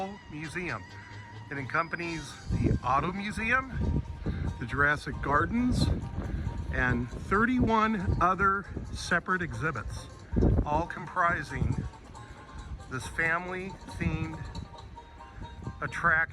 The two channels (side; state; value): both; identical; correlation 1.00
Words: Museum. It accompanies the Auto Museum, the Jurassic Gardens, and 31 other separate exhibits, all comprising this family-themed